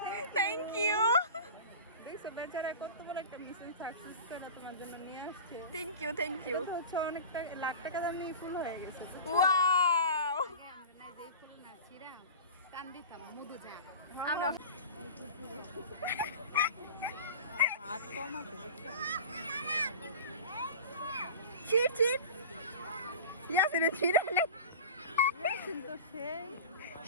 থ্যাংক ইউ দেখছো বেচারা কত বড় একটা মিশন সাকসেস করে তোমার জন্য নিয়ে আসছে। Thank you thank you. এটা হচ্ছে অনেকটা লাখ টাকা দামি ফুল হয়ে গেছে। ওয়াও আমরা না যেই ফুল না ছিঁড়া কান দিতাম মধু যা। আমরা হাত কমাতে ছিট ছিট ইয়াসিন ছিড়ে নে কিন্তু সেই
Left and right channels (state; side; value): inverted; both; correlation -0.34